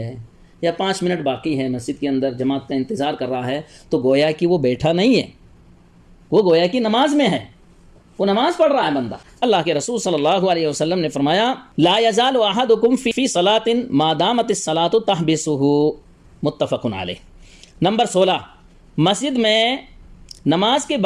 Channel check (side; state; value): both; identical; correlation 1.00